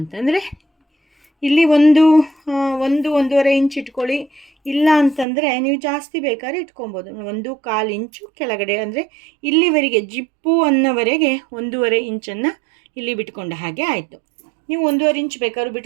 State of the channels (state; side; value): drops out; left; at 5.2 s